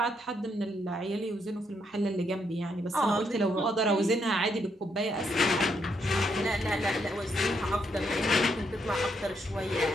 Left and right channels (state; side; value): normal; both; correlation 0.76